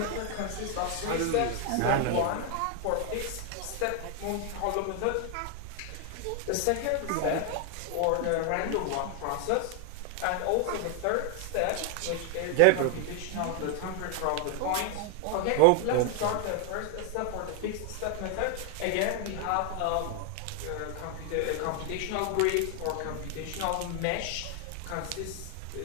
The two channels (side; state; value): both; different; correlation 0.00